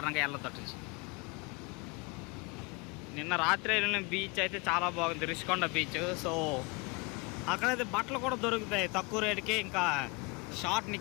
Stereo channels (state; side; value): quieter; right; 27.9 dB